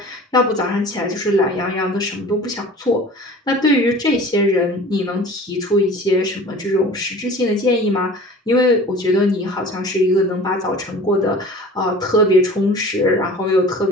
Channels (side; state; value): both; normal; correlation 0.42